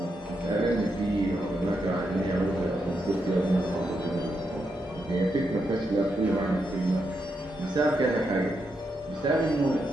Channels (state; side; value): normal; both; correlation 0.82